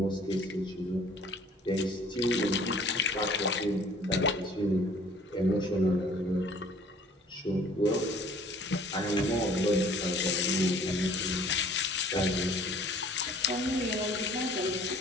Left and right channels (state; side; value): normal; both; correlation 0.53